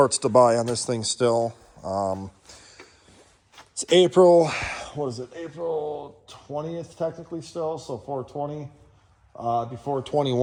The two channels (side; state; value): both; identical; correlation 1.00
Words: to buy on this thing still. It's April, April 20th technically still, so 420. Before